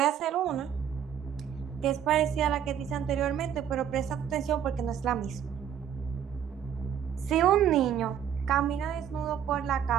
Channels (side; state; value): left; quieter; 9.1 dB